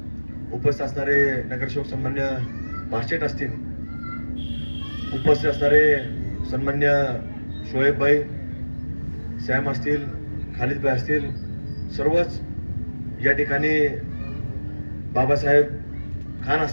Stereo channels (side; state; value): both; inverted; correlation -1.00